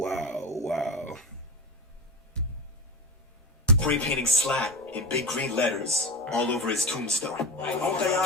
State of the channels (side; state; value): both; normal; correlation 0.23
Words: Spray painting SLAT in big green letters all over his tombstone. Don't think